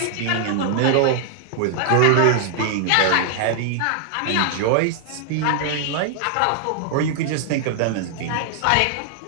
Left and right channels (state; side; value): different; both; correlation 0.00